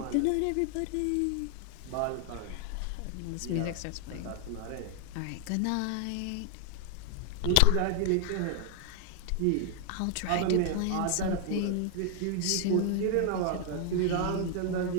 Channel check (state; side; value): different; both; correlation 0.00